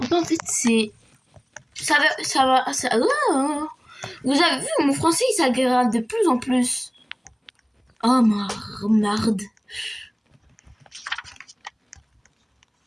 pas en fait c'est... Ça va... Oh. Vous avez vu, mon français il s'aggrave de plus en plus. Oh marde.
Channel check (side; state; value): both; identical; correlation 1.00